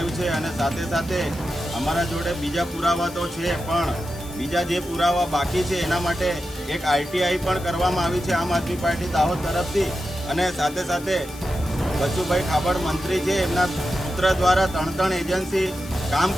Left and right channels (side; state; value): left; noise; hiss, 18 dB below the sound